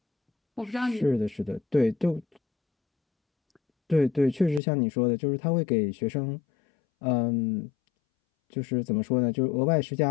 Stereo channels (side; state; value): right; drops out; at 4.6 s